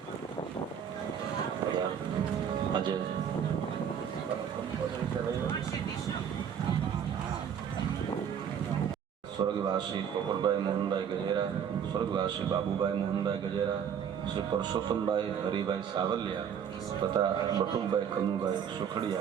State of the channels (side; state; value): left; quieter; 8.1 dB